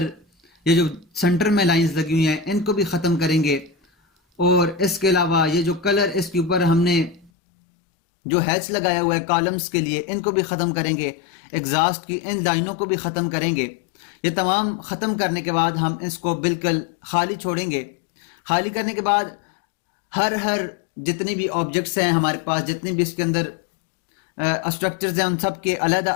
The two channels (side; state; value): right; drops out; at 7.3 s